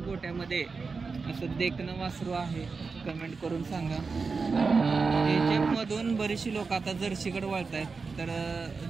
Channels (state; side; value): quieter; left; 4.6 dB